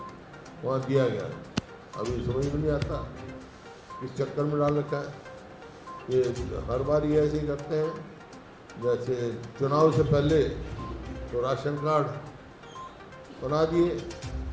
वहाँ दिया गया। अभी समझ में नहीं आता किस चक्कर में डाल रखा है। ये हर बार ये ऐसे ही करते हैं। जैसे चुनाव से पहले तो राशन कार्ड बना दिए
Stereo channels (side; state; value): both; identical; correlation 1.00